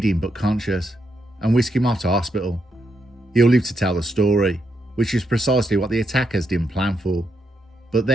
but conscious, and whisk him off to hospital. He'll live to tell the story, which is precisely what the attackers didn't plan for. But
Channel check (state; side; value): normal; both; correlation 0.80